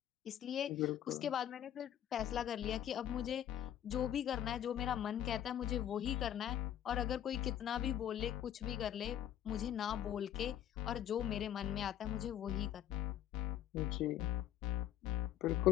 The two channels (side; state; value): right; quieter; 10.9 dB